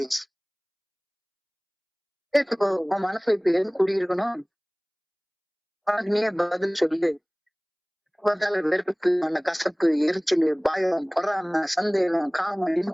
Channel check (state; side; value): identical; both; correlation 1.00